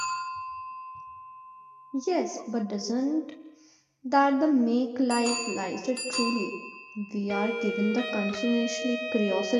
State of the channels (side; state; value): both; identical; correlation 1.00